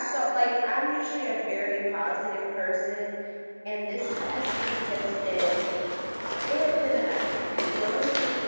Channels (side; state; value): both; inverted; correlation -1.00